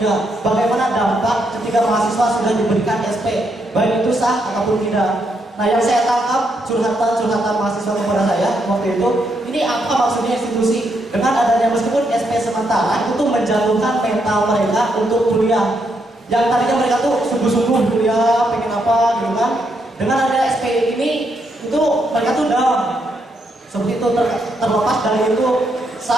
Bagaimana dampak ketika mahasiswa sudah diberikan SP, baik itu sah ataupun tidak. Nah, yang saya tangkap curhatan mahasiswa kepada saya waktu itu, ini apa maksudnya institusi dengan adanya meskipun SP sementara itu menjatuhkan mental mereka untuk kuliah. Yang tadinya mereka tuh sungguh-sungguh kuliah, pengen apa gitu kan. Dengan adanya SP ini itu mereka tuh down. Seperti itu terlepas dari itu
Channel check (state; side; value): normal; both; correlation 0.78